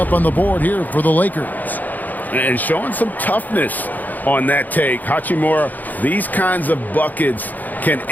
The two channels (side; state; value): right; late; 0.083 ms